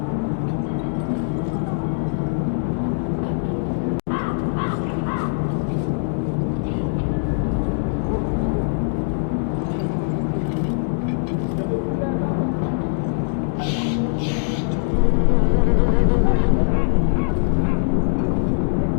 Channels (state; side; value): silent; right; digital silence